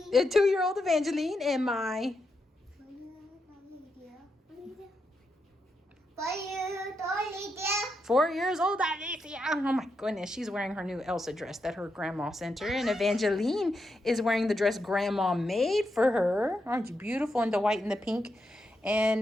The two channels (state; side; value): normal; both; correlation 0.84